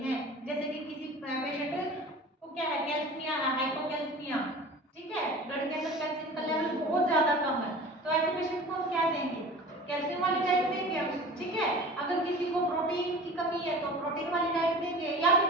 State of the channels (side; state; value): both; normal; correlation 0.39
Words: हैं। जैसे कि किसी पेशेंट को क्या है, कैल्शियम है, हाइपोकैल्सिमिया, ठीक है, ब्लड के अंदर कैल्शियम का लेवल बहुत ज्यादा कम है, तो ऐसे पेशेंट को हम क्या देंगे, कैल्शियम वाली डाइट देंगे हम। ठीक है, अगर किसी को प्रोटीन की कमी है तो प्रोटीन वाली डाइट देंगे, या फिर